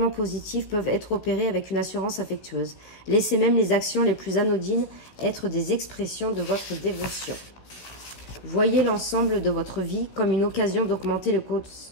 positifs peuvent être opérés avec une assurance affectueuse. Laissez même les actions les plus anodines être des expressions de votre dévotion. Voyez l'ensemble de votre vie comme une occasion d'augmenter le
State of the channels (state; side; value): late; right; 16 ms